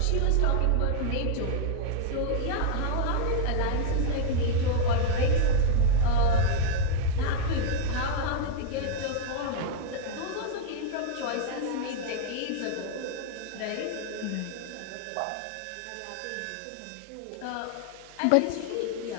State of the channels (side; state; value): both; different; correlation 0.00